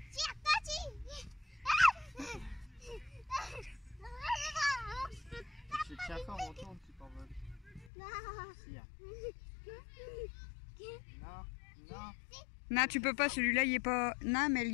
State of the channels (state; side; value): drops out; right; at 7.9 s